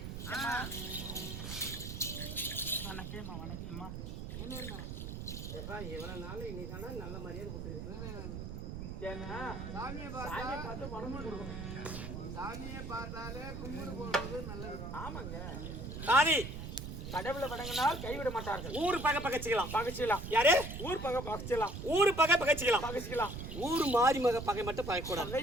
வணக்கம்மா வணக்கம்மா. எப்பா இவ்வளவு நாள் இன்னைக்கான நல்ல மரியாதை கொடுத்துருக்கேன். ஏன்னா சாமியை பார்த்து பணமும் கொடுக்கணும். சாமியை பார்த்தாலே கும்பிடு போடுறது நல்லது. ஆமாங்க தாதி, கடவுளை வணங்கினால் கைவிட மாட்டார்கள். ஊர் பகை பகைச்சிக்கலாம் பகைச்சிக்கலாம். யாரு ஊர் பகை பகைச்சிக்கலாம். ஊர் பகை பகைச்சிக்கலாம் பகைச்சிக்கலாம். ஊர் மாறி மக பகை மட்டும் பகைக்கூடாது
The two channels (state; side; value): noise; right; rumble, 7 dB below the sound